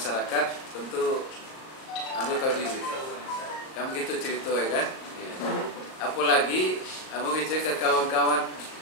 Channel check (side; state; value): right; late; 37 ms